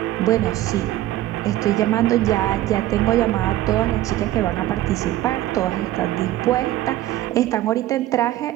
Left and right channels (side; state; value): left; quieter; 14.5 dB